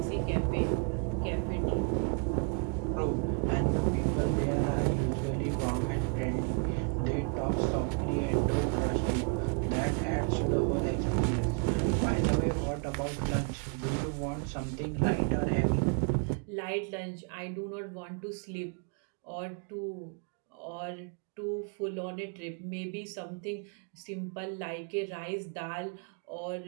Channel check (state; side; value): quieter; left; 35.5 dB